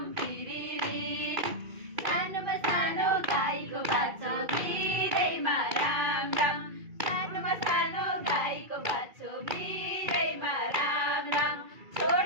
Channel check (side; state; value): left; late; 2.3 ms